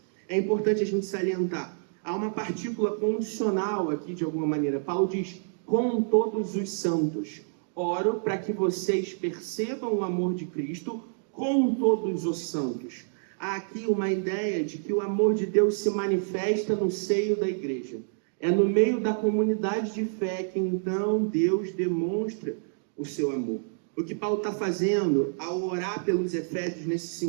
É importante a gente salientar, há uma partícula condicional aqui de alguma maneira. Paulo diz: com todos os santos. Oro para que vocês percebam o amor de Cristo com todos os santos. Há aqui uma ideia de que o amor de Deus se manifesta no seio da igreja. É no meio da comunidade de fé que então Deus demonstra o seu amor. O que Paulo está fazendo ao orar pelos efésios nesse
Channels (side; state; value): left; silent; digital silence